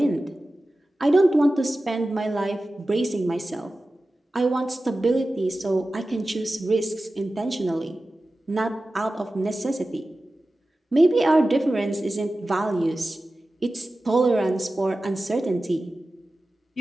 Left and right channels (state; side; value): normal; both; correlation 0.95